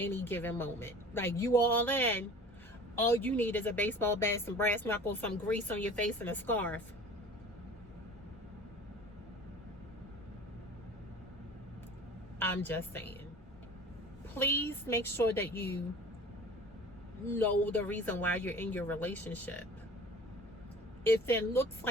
given moment. Like, you all in. All you need is a baseball bat, some brass knuckles, some grease on your face, and a scarf. I'm just saying. Please make sure that you know the reason why you're in your relationship. If it looks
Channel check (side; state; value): both; normal; correlation 0.43